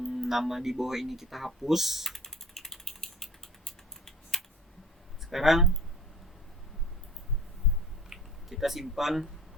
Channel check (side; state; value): both; normal; correlation 0.44